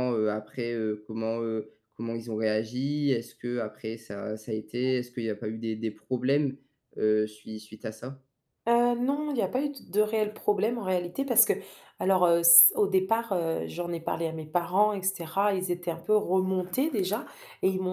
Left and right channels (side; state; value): both; identical; correlation 1.00